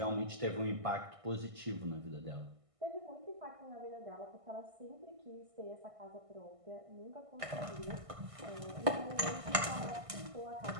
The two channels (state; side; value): late; left; 1.5 ms